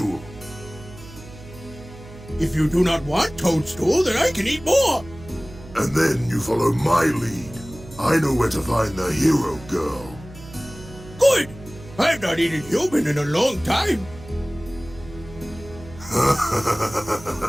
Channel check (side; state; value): right; noise; hum, 18 dB below the sound